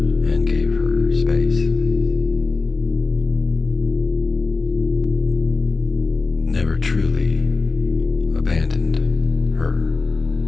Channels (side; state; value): right; quieter; 4.0 dB